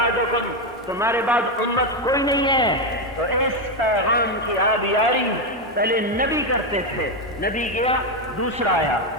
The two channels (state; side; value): normal; both; correlation 0.07